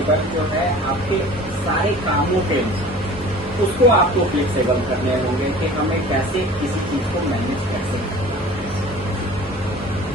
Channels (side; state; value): both; normal; correlation 0.43